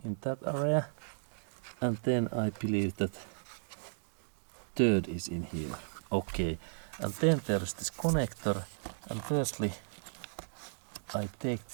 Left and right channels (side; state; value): left; silent; digital silence